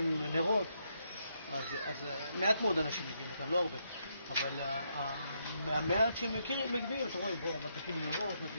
נרות. אז מעט מאוד אנשים מגיעים לכאן, לא הרבה. אבל מהמעט שהם מגיעים, אתם רואים, בואו, מדליקים נרות,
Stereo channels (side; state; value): both; inverted; correlation -0.78